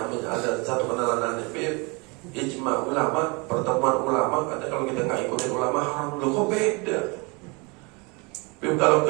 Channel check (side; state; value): left; quieter; 29.0 dB